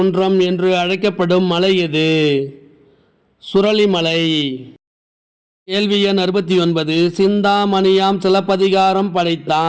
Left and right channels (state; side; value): identical; both; correlation 1.00